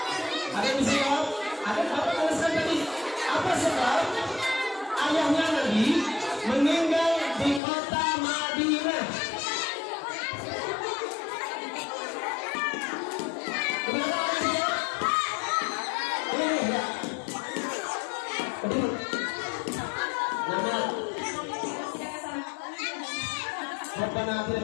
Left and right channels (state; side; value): drops out; right; at 7.6 s